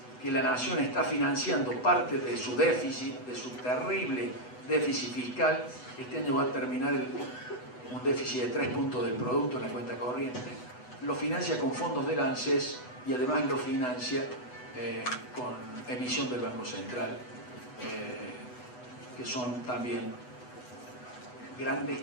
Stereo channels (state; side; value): late; right; 8.1 ms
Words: que la Nación está financiando parte de su déficit, de su terrible déficit fiscal. Este año va a terminar un déficit de 3 puntos del producto en la cuenta corriente. Lo financia con fondos del ANSES y además lo financia con emisión del Banco Central, que son también grandes